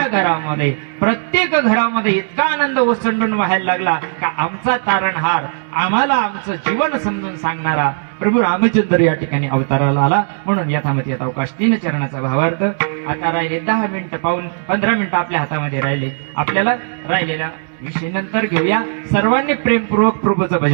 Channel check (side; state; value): left; silent; digital silence